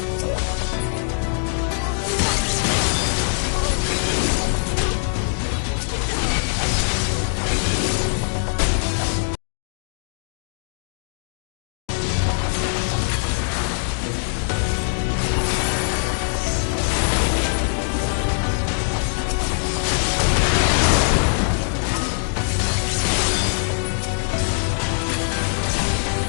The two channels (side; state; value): right; silent; digital silence